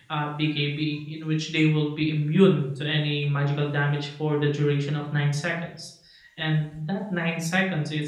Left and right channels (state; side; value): identical; both; correlation 1.00